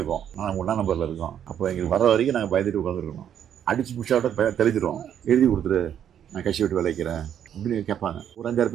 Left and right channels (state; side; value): quieter; left; 9.5 dB